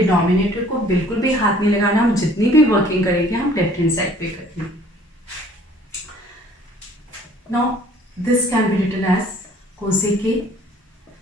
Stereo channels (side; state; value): both; normal; correlation 0.55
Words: को बिल्कुल भी हाथ नहीं लगाना, हम जितनी भी वर्किंग करेंगे हम लेफ्ट हैंड साइड पे करेंगे. Now this can be written as cosec A